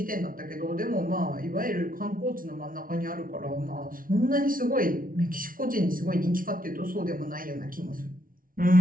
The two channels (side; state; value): left; late; 0.41 ms